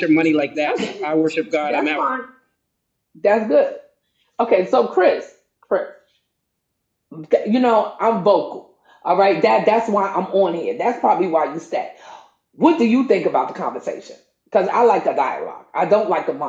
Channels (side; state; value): both; identical; correlation 1.00